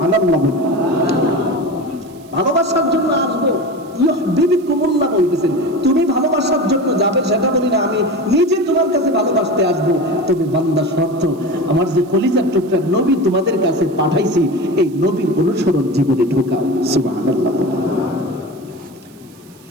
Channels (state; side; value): noise; right; hiss, 28 dB below the sound